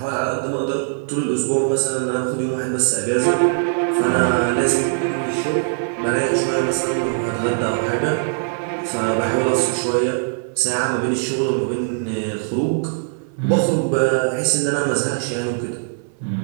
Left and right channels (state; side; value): silent; left; 57 dB below the other